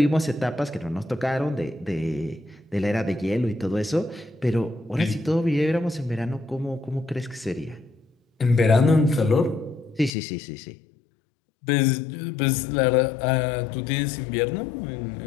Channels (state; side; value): drops out; right; at 10.1 s